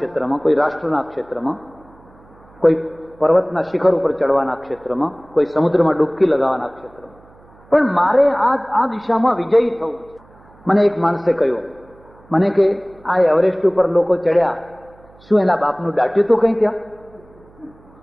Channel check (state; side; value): noise; right; hum, 27 dB below the sound